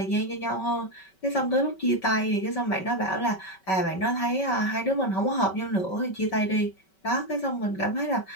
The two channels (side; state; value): right; late; 5.3 ms